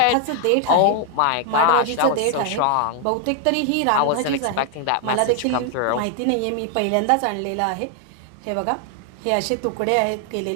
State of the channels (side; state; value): both; different; correlation 0.00